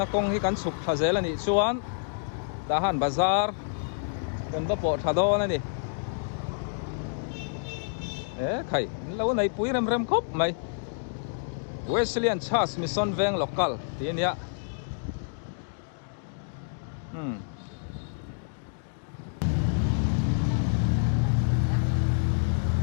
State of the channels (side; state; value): right; silent; digital silence